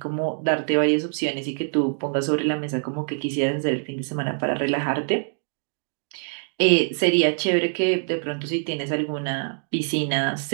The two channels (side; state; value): left; silent; 59 dB below the other